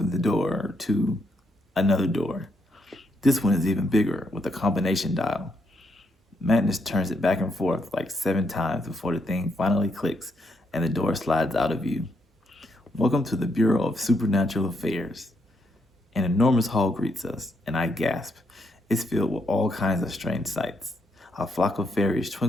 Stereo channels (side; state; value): both; normal; correlation 0.77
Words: the door to another door. This one is even bigger with a combination dial. Magnus turns it back and forth like 7 times before the thing finally clicks and the door slides out of view. Welcome to the Bureau of Supernatural Affairs. An enormous hall greets us, and I gasp. It's filled with all kinds of strange sights. A flock of fairies